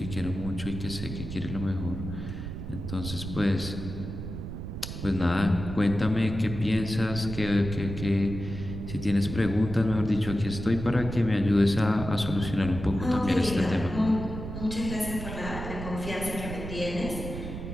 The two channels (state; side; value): noise; right; rumble, 7 dB below the sound